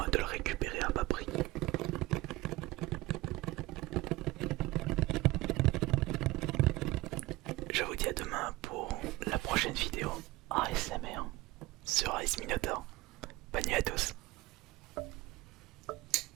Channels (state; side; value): quieter; left; 19.4 dB